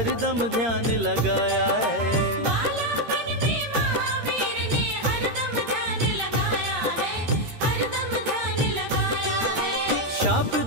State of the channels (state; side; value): late; left; 13 ms